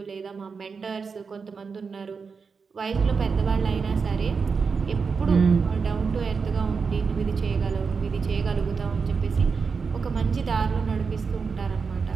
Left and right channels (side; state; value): left; quieter; 5.3 dB